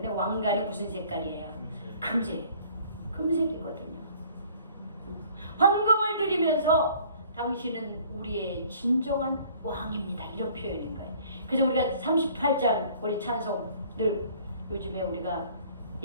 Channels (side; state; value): both; inverted; correlation -0.54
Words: 왕관이 무슨 색깔이에요? 금색. 금색이거든요. 황금을 드리면서 당신은 우리의 진정한 왕입니다. 이런 표현인 거예요. 그래서 우리가 38장 우리 찬송 늘 요즘에 우리가